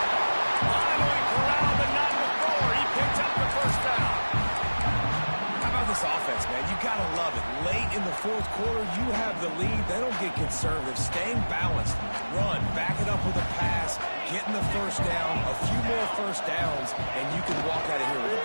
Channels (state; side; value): inverted; both; correlation -1.00